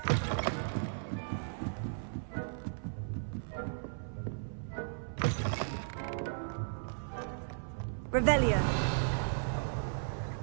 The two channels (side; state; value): left; silent; 54 dB below the other